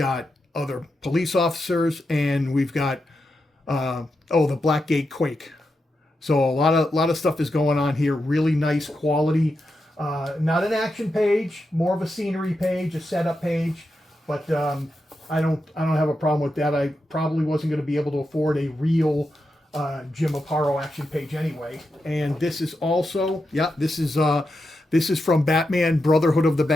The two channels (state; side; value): normal; both; correlation 0.87